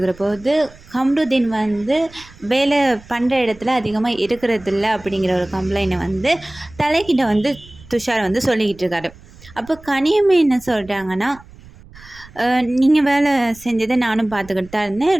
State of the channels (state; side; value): noise; right; rumble, 22 dB below the sound